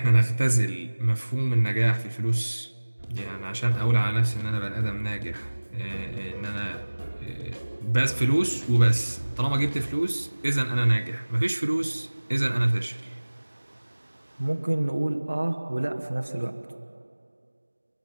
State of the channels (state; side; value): inverted; both; correlation -1.00